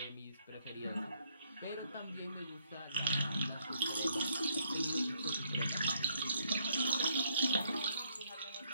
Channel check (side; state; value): both; inverted; correlation -0.68